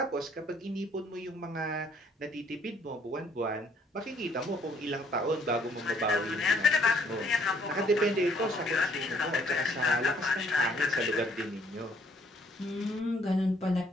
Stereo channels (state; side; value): normal; both; correlation 0.64